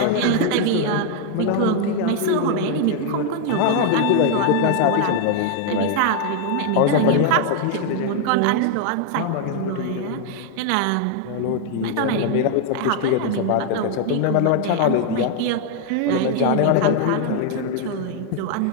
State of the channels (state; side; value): different; both; correlation 0.00